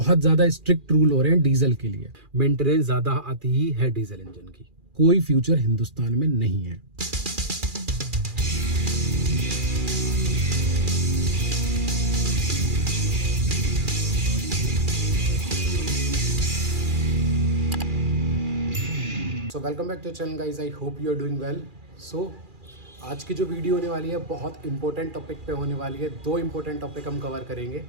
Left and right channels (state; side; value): late; left; 2.4 ms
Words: ज्यादा स्ट्रिक्ट रूल हो रहे हैं डीजल के लिए। मेंटेनेंस ज्यादा आती ही है डीजल इंजन की। कोई फ्यूचर हिंदुस्तान में नहीं है। So welcome back to channel guys, I hope you are doing well. So आज की जो वीडियो होने वाली है बहुत इंपॉर्टेंट टॉपिक पे होने वाली है। दो इंपॉर्टेंट टॉपिक हम कवर करेंगे।